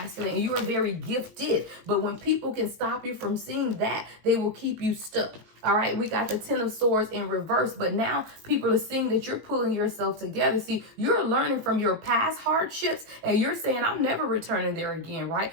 and you are very gifted. But when people can stop you from seeing that, they will keep you stuck. All right, we got the Ten of Swords in reverse, but now people are seeing that you're pulling yourself together. See, you're learning from your past hardships and you're saying, I'm never returning there again, right?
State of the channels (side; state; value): left; late; 19 ms